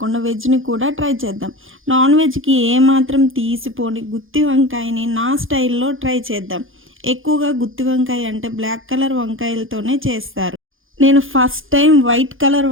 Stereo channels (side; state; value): left; late; 0.59 ms